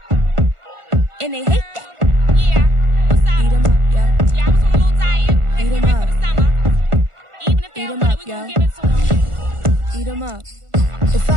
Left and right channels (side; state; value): left; late; 1.4 ms